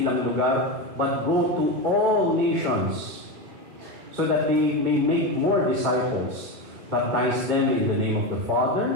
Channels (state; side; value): late; left; 2.4 ms